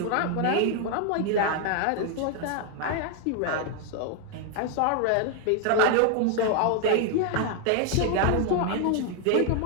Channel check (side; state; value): both; different; correlation 0.01